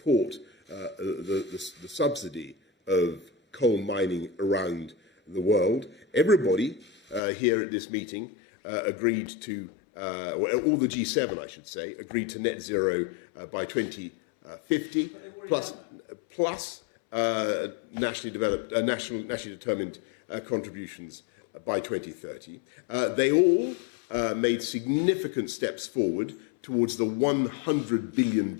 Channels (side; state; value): right; drops out; at 7.2 s